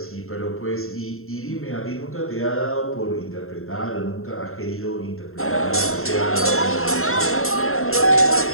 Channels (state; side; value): late; right; 0.62 ms